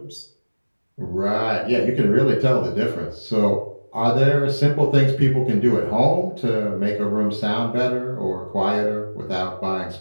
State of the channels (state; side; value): inverted; both; correlation -1.00